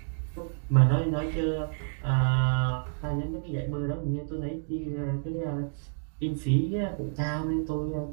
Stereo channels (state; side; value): silent; left; digital silence